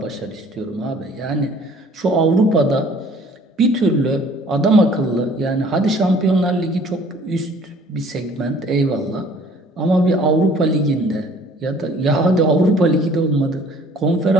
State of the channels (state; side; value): normal; both; correlation 0.54